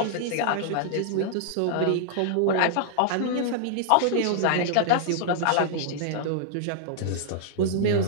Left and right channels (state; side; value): different; both; correlation -0.01